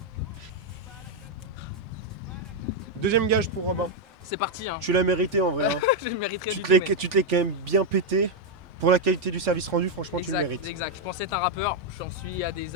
Deuxième gage pour Robin. C'est parti, hein. Tu l'as mérité en vrai. hein. Je le mériterais Tu du te tout. l'es mais- tu te l'es quand même bien pété. Pour la qualité du service rendu, franchement, tu le Exact, mérites. exact. Je pensais être un rappeur, j'en suis à des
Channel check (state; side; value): normal; both; correlation 0.01